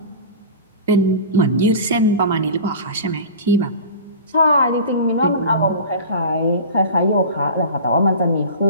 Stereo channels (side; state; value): both; inverted; correlation -0.34